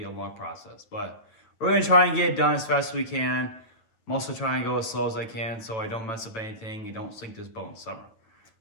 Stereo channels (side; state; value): right; late; 9.0 ms